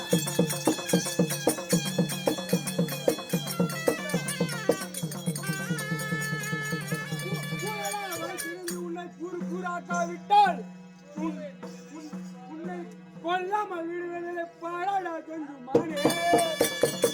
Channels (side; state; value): both; identical; correlation 1.00